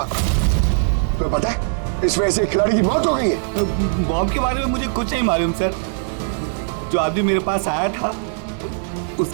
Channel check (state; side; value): silent; left; 58 dB below the other